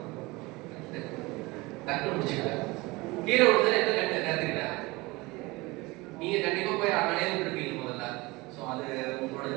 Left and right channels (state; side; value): quieter; left; 22.6 dB